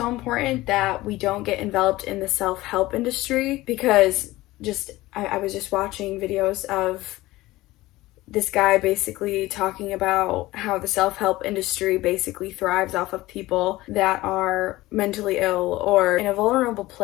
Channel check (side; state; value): right; quieter; 18.2 dB